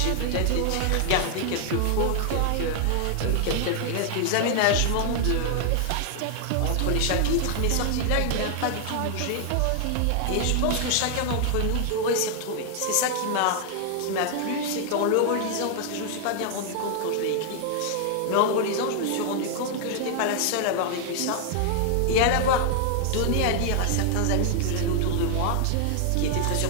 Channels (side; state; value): both; different; correlation 0.00